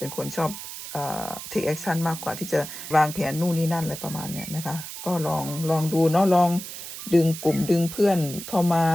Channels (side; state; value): right; noise; hiss, 10 dB below the sound